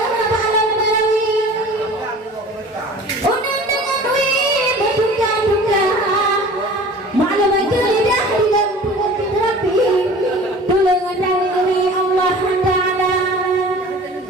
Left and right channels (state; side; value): normal; both; correlation 0.43